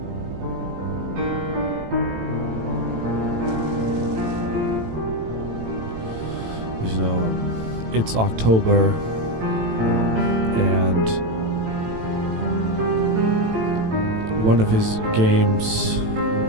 You know, it's October, and one of his games,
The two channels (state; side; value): late; left; 18 ms